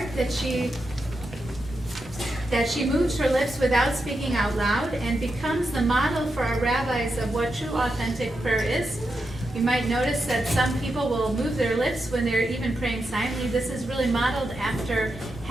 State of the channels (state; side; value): normal; both; correlation 0.86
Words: that she moves her lips without speaking out loud and becomes the model for our rabbis of what true authentic prayer is. You might notice that some people will move their lips when they're even praying silently. This is really modeled after